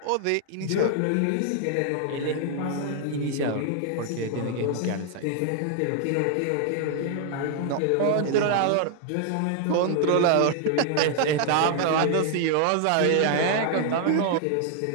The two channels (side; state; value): both; different; correlation 0.00